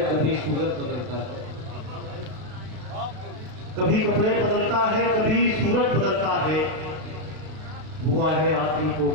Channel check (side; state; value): left; late; 32 ms